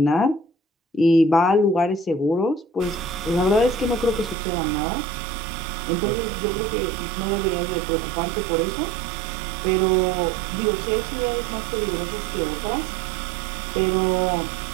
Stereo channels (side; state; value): left; drops out; at 4.4 s